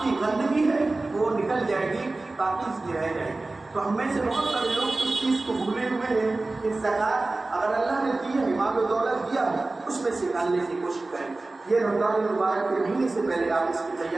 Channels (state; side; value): quieter; left; 3.2 dB